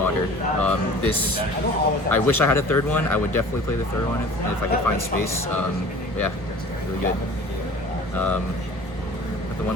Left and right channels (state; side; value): normal; both; correlation 0.44